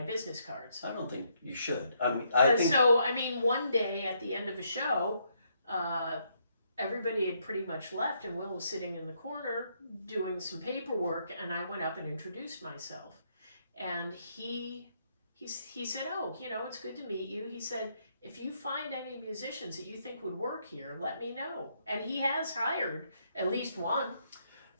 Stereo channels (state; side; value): inverted; both; correlation -0.74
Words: business cards. I don't think you should. I mean, I think So, I mean, one day at the end of a show, everybody had pretty much left, and Will was sitting in the corner doing some paperwork, and I went up and introduced myself. And he said, "Oh, it's good to meet you." He said, "If you find any musicians that you think would work here, let me know." And he has hired at least one.